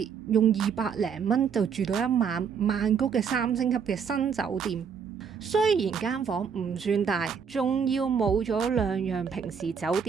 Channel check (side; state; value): left; quieter; 6.7 dB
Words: 用200零蚊就住到一晚曼谷嘅3星級嘅新酒店？雖然間房唔算大，仲要冇咗2樣平時酒